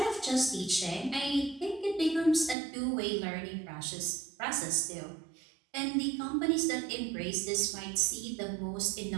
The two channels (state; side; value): drops out; left; at 2.6 s